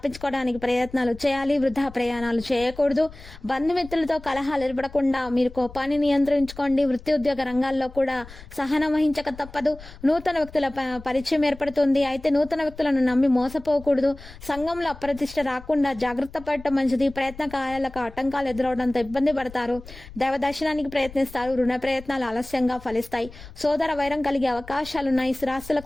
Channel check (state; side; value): noise; left; rumble, 18 dB below the sound